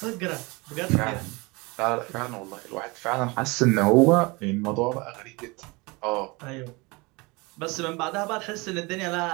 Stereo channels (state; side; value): quieter; left; 25.7 dB